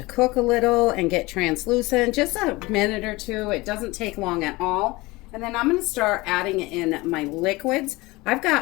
cook a little and get translucent, just a minute or two, it doesn't take long at all. And then I'm going to start adding in my liquids. I've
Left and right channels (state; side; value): quieter; right; 21.9 dB